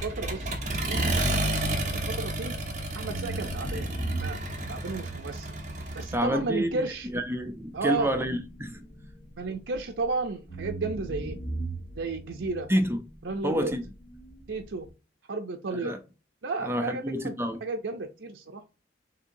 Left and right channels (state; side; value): normal; both; correlation 0.43